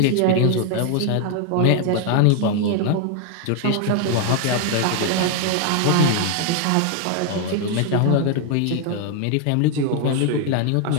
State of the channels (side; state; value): both; different; correlation 0.00